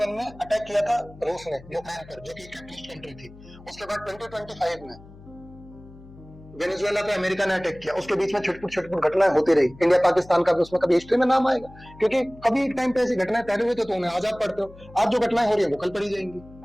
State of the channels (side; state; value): left; noise; hum, 20 dB below the sound